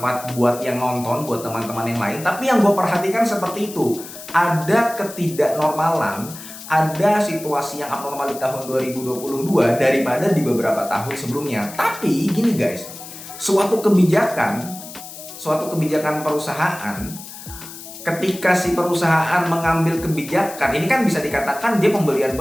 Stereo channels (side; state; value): left; noise; hiss, 14 dB below the sound